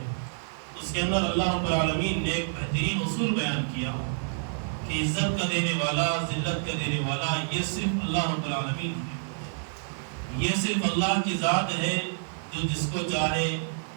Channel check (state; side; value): silent; left; digital silence